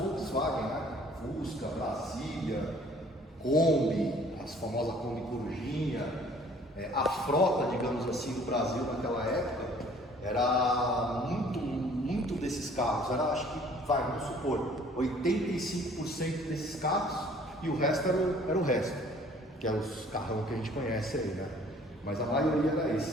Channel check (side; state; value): both; normal; correlation 0.55